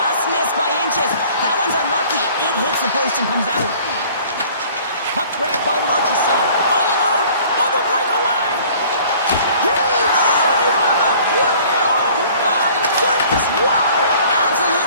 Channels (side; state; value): both; inverted; correlation -0.51